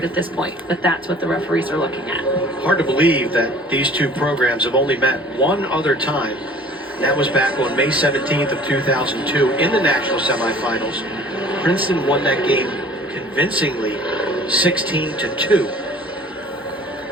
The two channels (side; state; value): both; normal; correlation 0.49